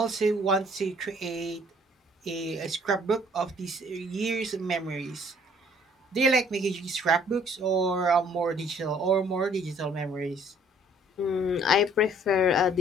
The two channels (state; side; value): normal; both; correlation 0.59